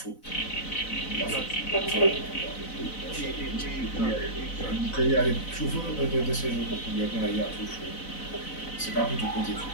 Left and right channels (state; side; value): late; right; 4.0 ms